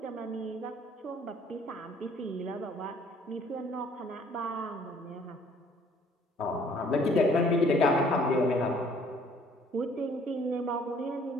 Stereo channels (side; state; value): both; normal; correlation 0.58